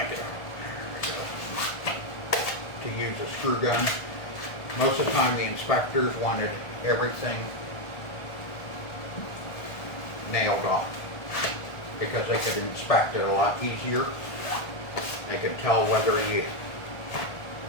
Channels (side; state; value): right; late; 1.5 ms